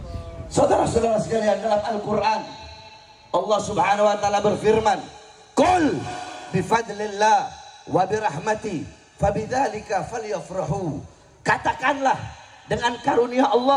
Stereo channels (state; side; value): identical; both; correlation 1.00